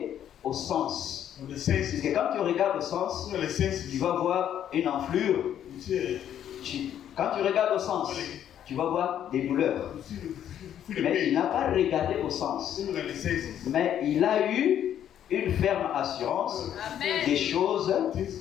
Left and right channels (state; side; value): quieter; right; 10.2 dB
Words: au sens. of the Parce senses. que quand tu regardes au sens, Look at the senses. tu vas voir une enflure. You see, Quand tu regardes au sens, tu vas voir des douleurs. you feel the Mais il pain. n'a pas regardé au sens. Look at the senses. Mais il a eu une ferme assurance Amen. des choses Things